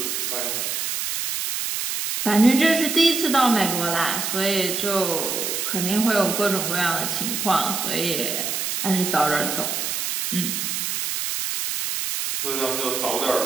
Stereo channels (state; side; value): noise; right; hiss, 2 dB below the sound